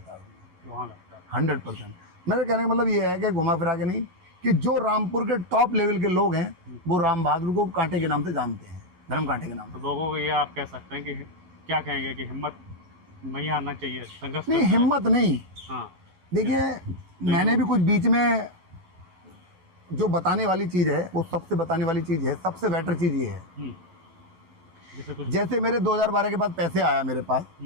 है वहाँ लगता है। 100%। मेरे कहने का मतलब ये है कि घुमा फिरा के नहीं, कि जो रामपुर के टॉप लेवल के लोग हैं वो राम बहादुर को कांटे के नाम से जानते हैं, धर्म कांटे के नाम से। तो लोगों को ये आप कह सकते हैं कि क्या कहेंगे कि हिम्मत नहीं हारना चाहिए, संघर्ष नहीं, करना हिम्मत नहीं। हाँ। देखिए, मैंने भी कुछ बीच में जो बताने वाली चीज़ है, वो सबसे बताने वाली चीज़ है, सबसे बेटर चीज़ ये है। जैसे कुछ, जैसे मेरे 2012 के बाद पैसे आया मेरे पास,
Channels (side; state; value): left; late; 11 ms